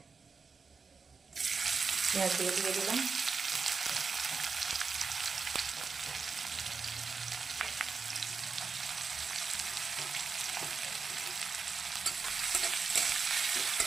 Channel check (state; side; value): quieter; left; 5.0 dB